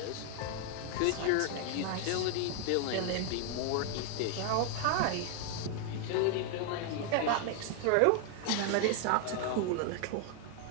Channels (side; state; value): both; different; correlation 0.00